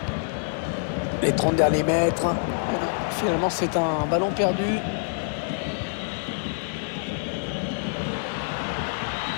Les 30 derniers mètres. Finalement, c'est un ballon perdu.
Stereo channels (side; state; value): right; silent; 59 dB below the other